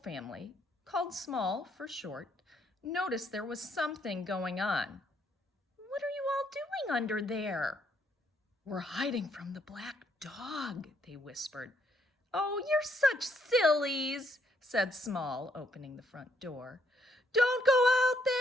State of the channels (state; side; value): normal; both; correlation 0.71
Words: family, called Small for short, noticed there was something going on. "What are you all doing under there?" "We're hiding from the black dog," they whispered. "Oh, you're such sillies," said Small, opening the front door. "Don't go out